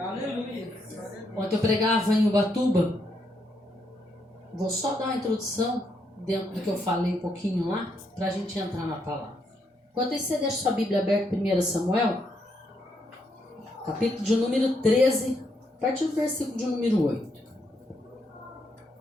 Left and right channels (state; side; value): normal; both; correlation 0.77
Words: Ontem eu pregava em Ubatuba. Vou só dar uma introdução dentro do que eu falei um pouquinho lá, para a gente entrar na palavra. Enquanto isso, você deixa sua Bíblia aberta, 1 Samuel, capítulo de número 13, a partir do versículo de número 8.